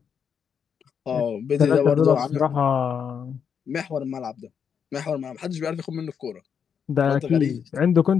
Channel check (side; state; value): right; quieter; 7.2 dB